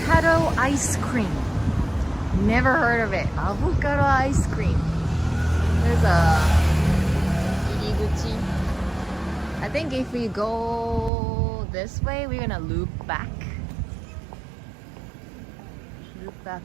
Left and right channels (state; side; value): drops out; left; at 11.1 s